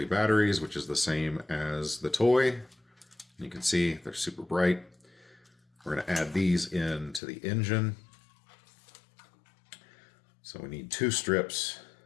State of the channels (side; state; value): right; drops out; at 7.2 s